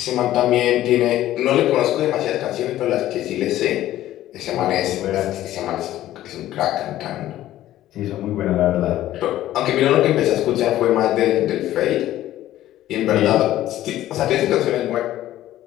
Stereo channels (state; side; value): quieter; right; 13.9 dB